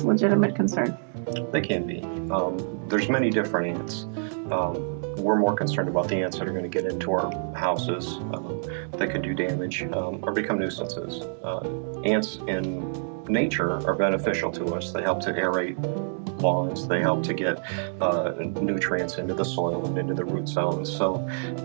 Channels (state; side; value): silent; left; digital silence